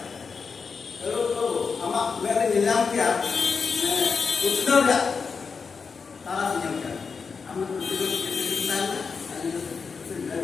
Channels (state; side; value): quieter; right; 5.3 dB